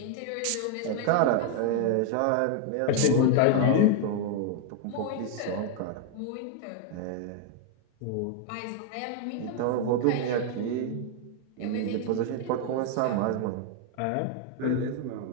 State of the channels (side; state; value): both; different; correlation 0.01